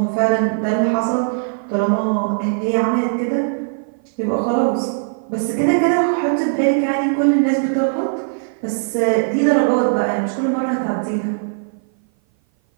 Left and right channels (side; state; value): left; silent; 57 dB below the other